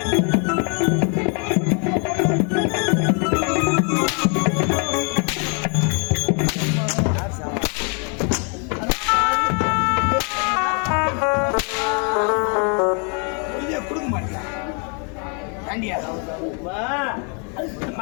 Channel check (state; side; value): quieter; right; 38.0 dB